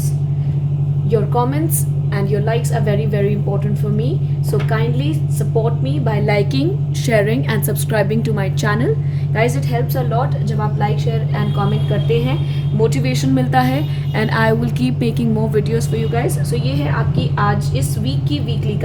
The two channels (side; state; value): both; identical; correlation 1.00